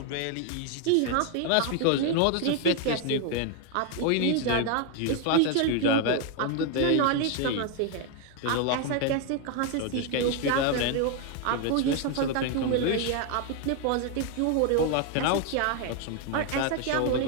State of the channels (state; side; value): different; both; correlation 0.01